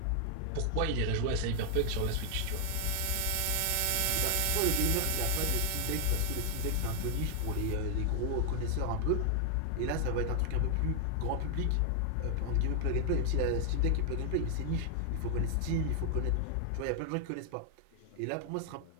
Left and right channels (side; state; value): both; different; correlation 0.00